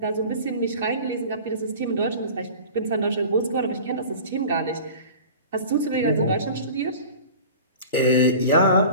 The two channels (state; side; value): inverted; both; correlation -0.39